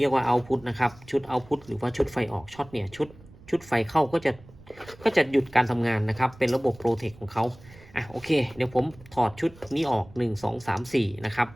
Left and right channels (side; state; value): right; noise; rumble, 22 dB below the sound